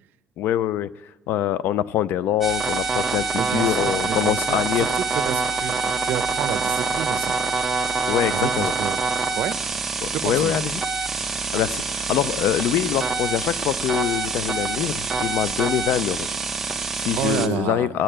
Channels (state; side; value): normal; both; correlation 0.51